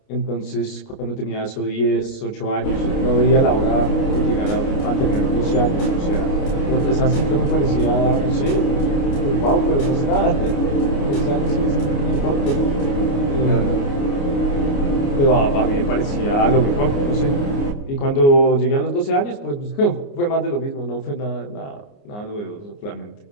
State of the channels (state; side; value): late; right; 29 ms